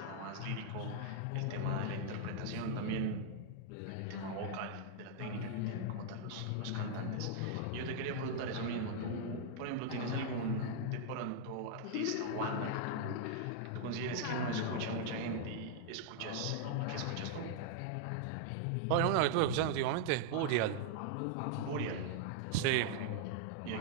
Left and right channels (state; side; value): different; both; correlation -0.01